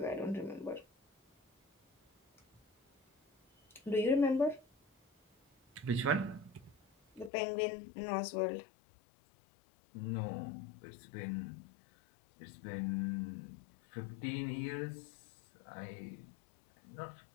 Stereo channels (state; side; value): drops out; right; at 7.3 s